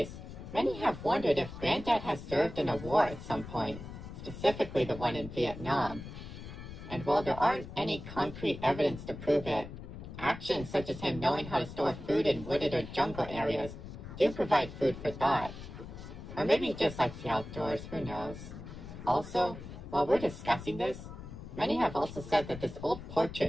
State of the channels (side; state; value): left; noise; rumble, 11 dB below the sound